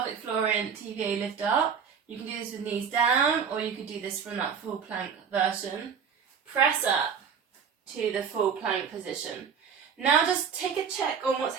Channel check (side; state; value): left; quieter; 6.8 dB